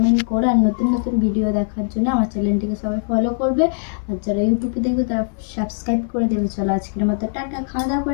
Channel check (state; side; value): silent; right; 65 dB below the other